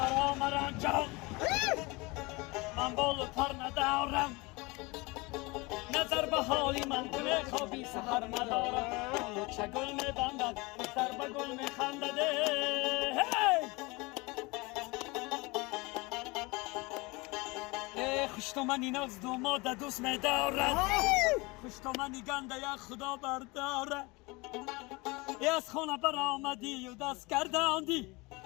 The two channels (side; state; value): right; quieter; 25.0 dB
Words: مرا جان من بال و پر ندارم نظر به حالی من کنه خوابی سحر ندارم اولو چگل میبندد دختر به گل میخندد هی خوش تو منی ناز دوماد دوست میدارد خوش تو منی گنده یک خدا بردارد ای از خونه برآمدی و دست گرداندی